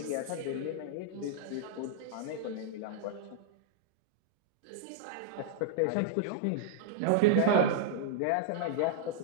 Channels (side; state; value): both; different; correlation -0.01